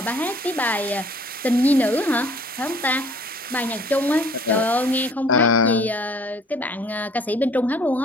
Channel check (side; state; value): both; normal; correlation 0.54